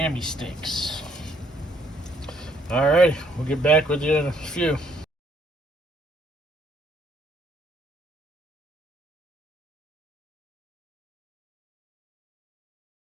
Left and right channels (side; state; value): both; normal; correlation 0.67